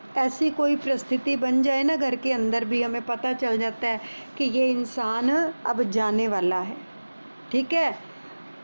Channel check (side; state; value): both; inverted; correlation -1.00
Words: ऐसी कोई परिस्थिति बन जाए ना, घर के अंदर भी हमें पता चल जाता है कि ये इंसान अब जाने वाला है, ठीक है,